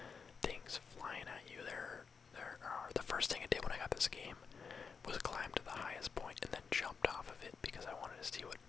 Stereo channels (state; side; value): quieter; right; 5.7 dB